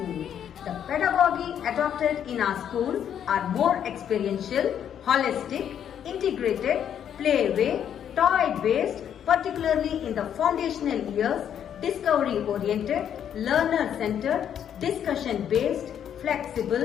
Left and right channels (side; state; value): right; quieter; 9.2 dB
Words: The pedagogy adopted in our school are more experiential, holistic, integrated, play-way, toy-based, particularly in the foundational years, discovery-oriented, learner-centered, discussion-based,